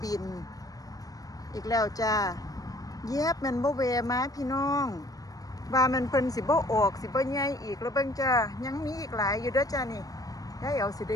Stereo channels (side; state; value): right; late; 0.18 ms